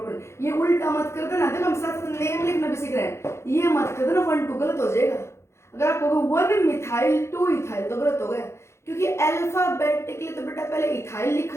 ये उल्टा मत कर देना, देखो हम साथ नेम लिखना भी सीख रहे हैं, ये मत कर देना 1 2 गलत हो जाएगा। अगर आप कहोगे 1 मिथाइल 2 इथाइल तो गलत हो गया, क्योंकि अल्फाबेटिकली तो बेटा पहले इथाइल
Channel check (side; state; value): right; late; 0.13 ms